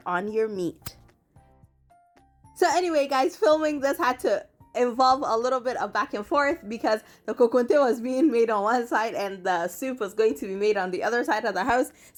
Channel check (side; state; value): both; identical; correlation 1.00